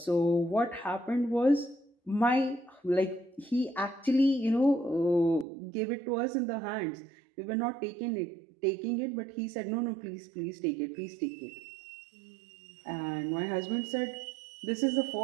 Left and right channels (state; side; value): drops out; left; at 5.5 s